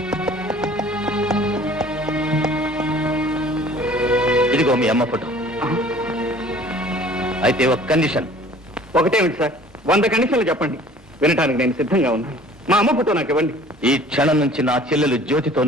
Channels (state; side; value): normal; both; correlation 0.50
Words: ఇదిగో మీ అమ్మ ఫోటో. అయితే ఒక కండిషన్. ఒకటేమిటి సార్? 100 కండిషన్లు చెప్పండి, వినటానికి నేను సిద్ధంగా ఉన్నాను. మా అమ్మ ఫోటో నాకు ఇవ్వండి. ఈ క్షణం నుంచి నా చెల్లెలు జ్యోతితో